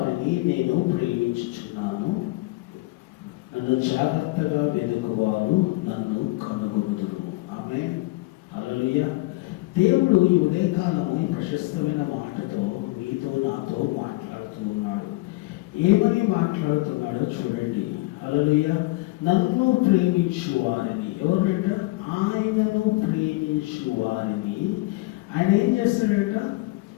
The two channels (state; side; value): quieter; right; 22.0 dB